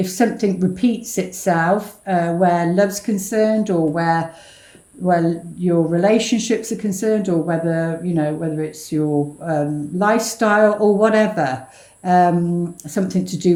something repeats itself where love's concerned, or where your relationships are concerned, or whether it's your lifestyle or whatever. Something to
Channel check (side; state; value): both; identical; correlation 1.00